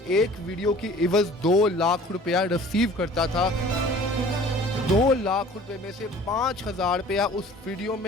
वीडियो की इवज 2 लाख रुपया रिसीव करता था। 2 लाख रुपए में से 5,000 रुपया उस वीडियो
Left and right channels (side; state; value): both; normal; correlation 0.48